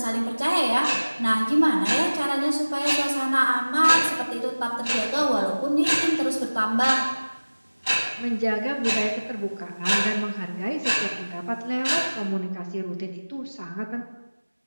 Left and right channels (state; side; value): inverted; both; correlation -1.00